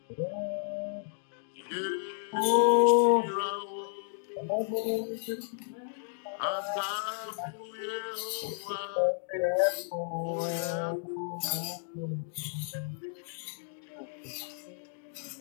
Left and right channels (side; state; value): right; silent; digital silence